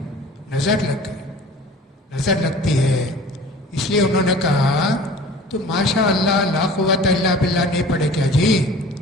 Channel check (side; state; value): both; normal; correlation 0.44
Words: نظر لگ گئی، نظر لگتی ہے. اس لیے انہوں نے کہا تو ماشاء اللہ لا قوت الا باللہ نہیں پڑھے کیا جی؟